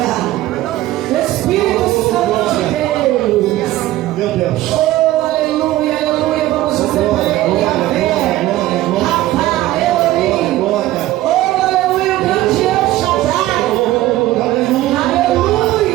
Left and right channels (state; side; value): quieter; left; 15.8 dB